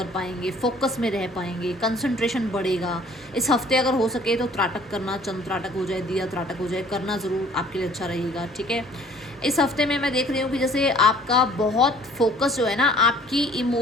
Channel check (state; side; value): normal; both; correlation 0.54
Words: पाएंगे, फोकस में रह पाएंगे, कंसंट्रेशन बढ़ेगा। इस हफ्ते अगर हो सके तो त्राटक करना, चंद त्राटक हो जाए, दिया त्राटक हो जाए, करना ज़रूर आपके लिए अच्छा रहेगा, ठीक है। इस हफ्ते में मैं देख रही हूँ कि जैसे आपका बहुत फोकस जो है ना आपकी